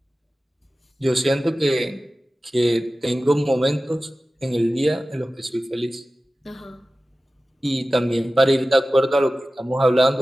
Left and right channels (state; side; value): normal; both; correlation 0.96